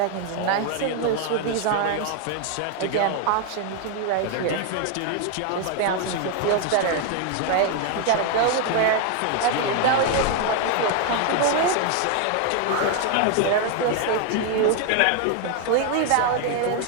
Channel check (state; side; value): different; both; correlation 0.01